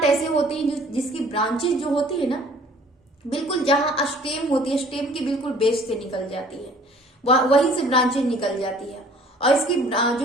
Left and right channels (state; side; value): normal; both; correlation 0.54